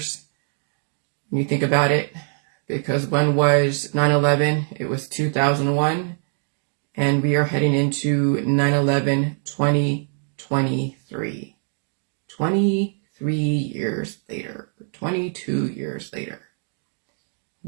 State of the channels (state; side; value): silent; left; 58 dB below the other